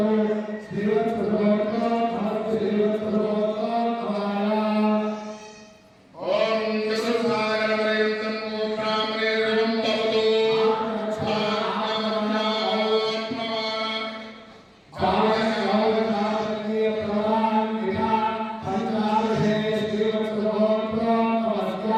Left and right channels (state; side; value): identical; both; correlation 1.00